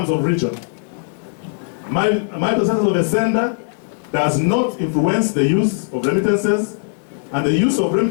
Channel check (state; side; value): silent; right; 64 dB below the other